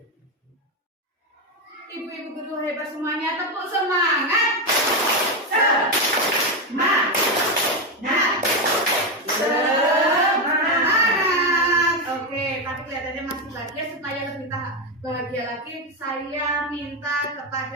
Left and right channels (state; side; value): normal; both; correlation 0.09